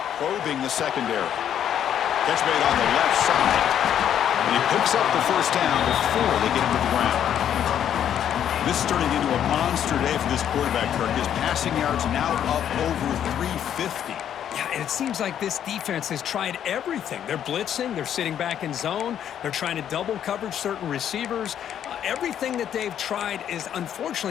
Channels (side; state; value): right; quieter; 9.8 dB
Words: probing the secondary. Catch made on the left side. And he picks up the first down before they get him to the ground. This is turning into a monster day for this quarterback, Kirk. His passing yards now up over 350. Yeah, and it seems like this defense has tried everything. They're blitzing, they're sitting back in zone, they're trying to double coverage certain receivers. Everything that they've tried is,